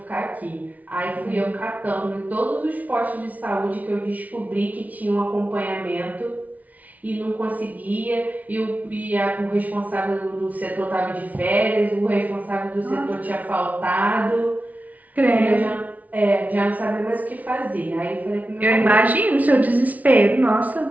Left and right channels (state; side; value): late; left; 0.073 ms